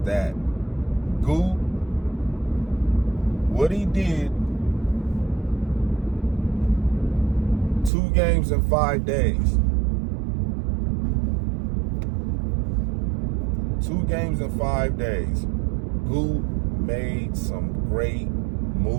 Gute, what he did 2 games in 5 days. 2 games in 5 days. Gute made some great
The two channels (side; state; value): left; drops out; at 7.9 s